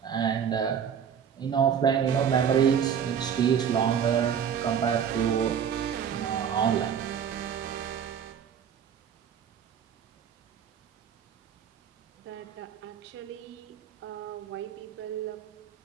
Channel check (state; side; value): quieter; left; 8.1 dB